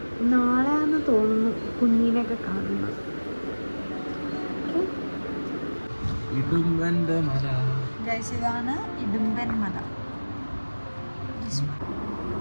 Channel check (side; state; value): both; inverted; correlation -1.00